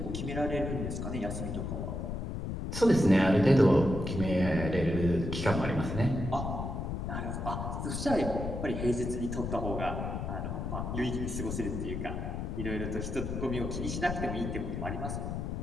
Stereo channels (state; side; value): noise; left; rumble, 4 dB below the sound